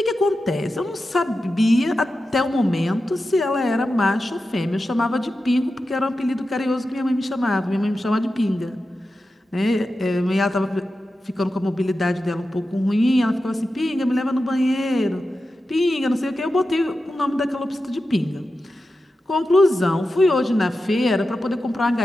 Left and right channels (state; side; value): normal; both; correlation 0.91